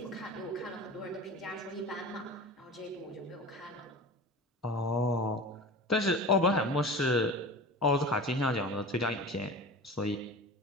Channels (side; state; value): both; normal; correlation 0.34